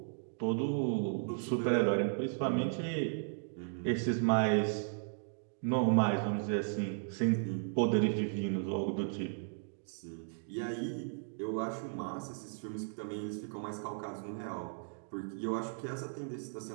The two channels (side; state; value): left; silent; digital silence